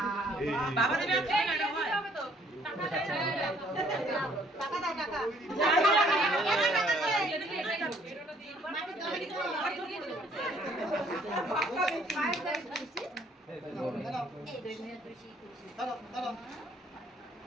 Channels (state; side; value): normal; both; correlation 0.62